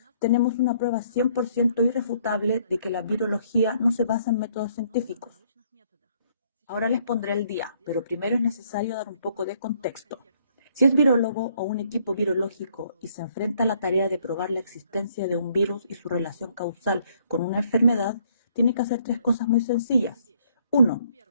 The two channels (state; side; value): inverted; both; correlation -0.65